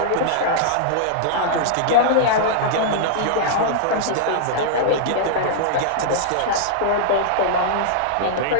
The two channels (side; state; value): both; different; correlation -0.02